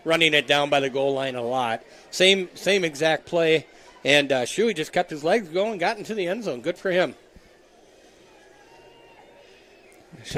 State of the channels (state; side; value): identical; both; correlation 1.00